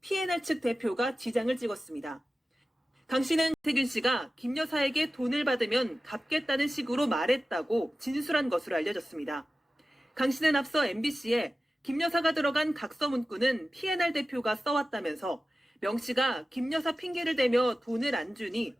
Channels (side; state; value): both; normal; correlation 0.95